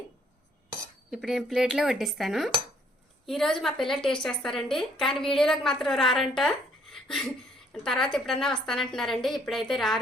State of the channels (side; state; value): both; normal; correlation 0.65